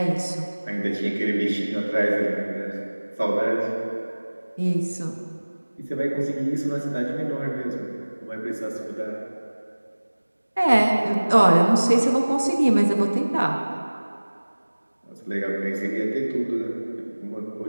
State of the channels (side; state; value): both; inverted; correlation -1.00